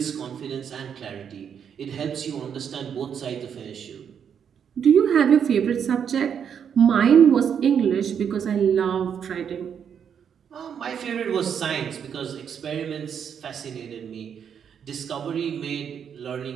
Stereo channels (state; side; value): quieter; left; 7.8 dB